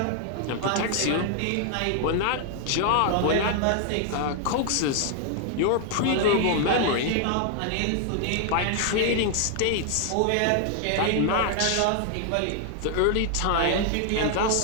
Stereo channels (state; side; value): different; both; correlation 0.00